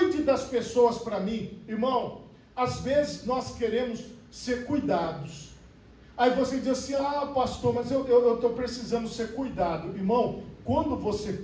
das pessoas para mim. Irmão, às vezes nós queremos ser cuidados. Aí você diz assim, ah pastor, mas eu estou precisando ser cuidado. Irmão, quando você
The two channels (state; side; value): identical; both; correlation 1.00